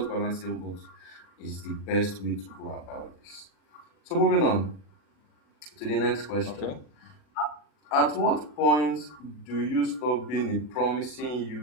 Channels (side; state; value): right; late; 40 ms